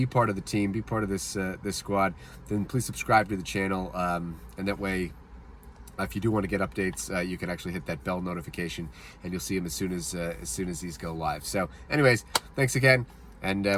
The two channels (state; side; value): identical; both; correlation 1.00